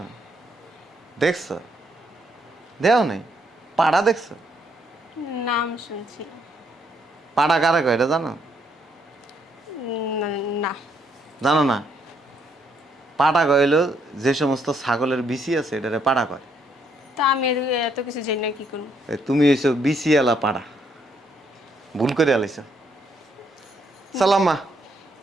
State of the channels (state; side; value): normal; both; correlation 0.72